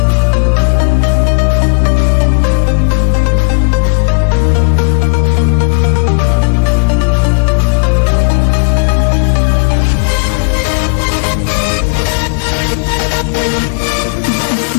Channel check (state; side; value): silent; right; digital silence